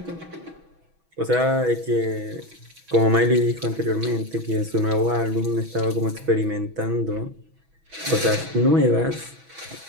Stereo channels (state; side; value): late; left; 6.1 ms